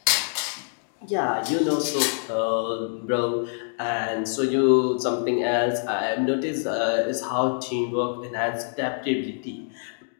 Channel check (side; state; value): right; silent; 59 dB below the other